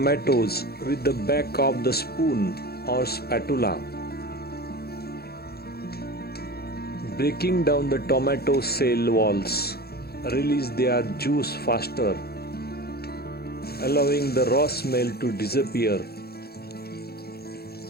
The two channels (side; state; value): right; late; 0.46 ms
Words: with the back of the spoon or spatula. Breaking down the tomato cell walls release their juice faster, allowing the raw smell to disappear.